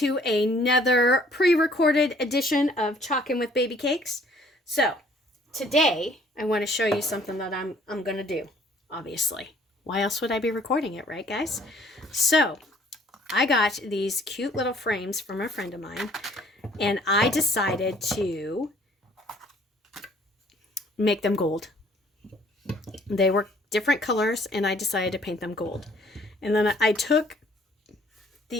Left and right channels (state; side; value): normal; both; correlation 0.59